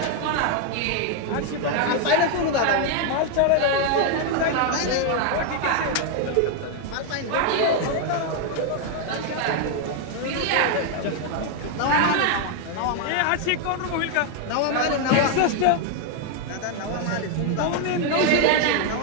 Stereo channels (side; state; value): both; different; correlation 0.01